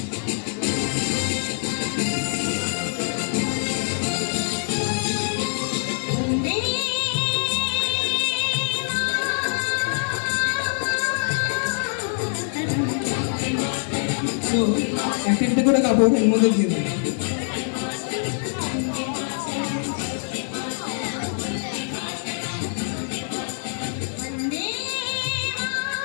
তো একটা করে কাপড় এর মধ্যে দিয়ে দেবো।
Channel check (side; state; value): right; silent; digital silence